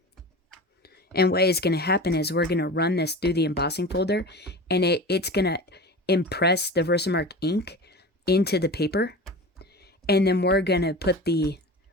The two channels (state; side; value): normal; both; correlation 0.32